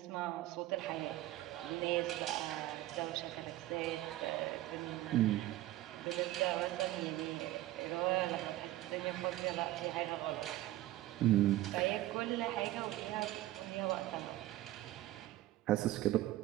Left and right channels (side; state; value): left; quieter; 15.9 dB